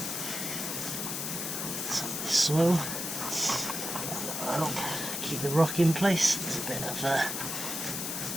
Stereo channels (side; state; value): left; noise; hiss, 3 dB below the sound